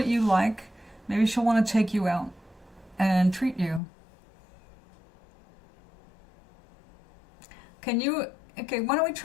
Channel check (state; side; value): drops out; right; at 3.8 s